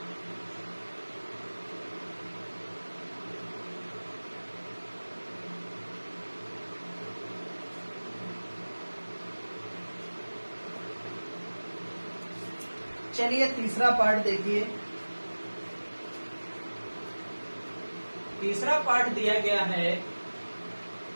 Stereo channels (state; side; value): inverted; both; correlation -1.00